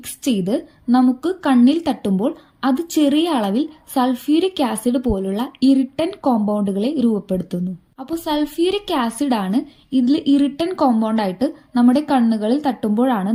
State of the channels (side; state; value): both; identical; correlation 1.00